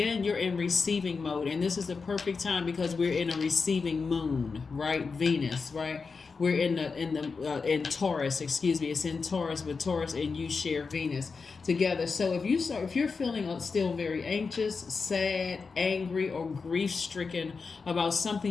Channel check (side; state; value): right; quieter; 4.8 dB